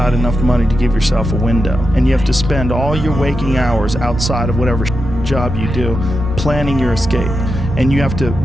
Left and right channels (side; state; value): both; normal; correlation 0.88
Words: enough money to give yourself a window, and you have to spend all your waking hours outside of whatever job you do planning your escape. And you have to